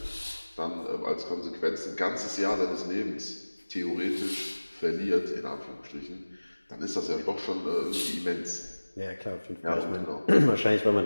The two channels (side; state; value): both; inverted; correlation -1.00